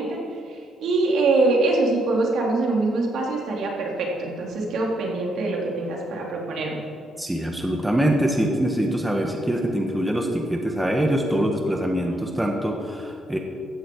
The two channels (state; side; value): normal; both; correlation 0.76